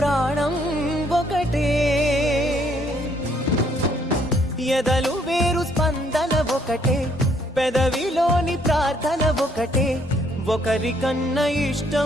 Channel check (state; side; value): normal; both; correlation 0.67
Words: ఒకటే. ఎదలు వేరు స్పందన ఒకటే, పెదవిలోని ప్రార్థన ఒకటే, ఒకరికన్నా